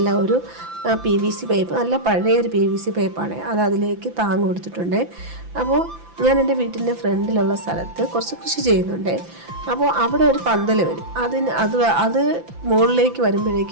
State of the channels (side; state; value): left; late; 5.9 ms